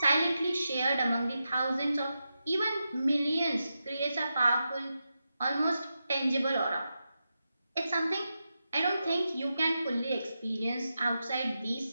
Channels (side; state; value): both; inverted; correlation -0.89